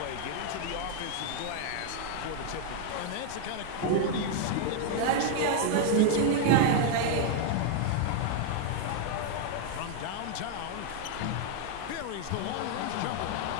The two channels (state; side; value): different; both; correlation 0.00